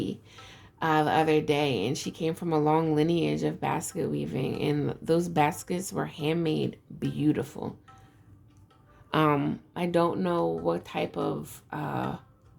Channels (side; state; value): both; identical; correlation 1.00